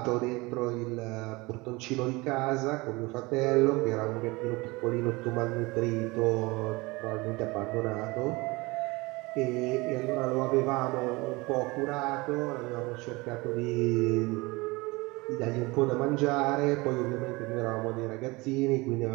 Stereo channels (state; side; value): quieter; left; 23.6 dB